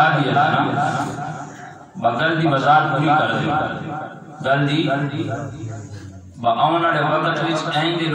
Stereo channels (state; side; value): identical; both; correlation 1.00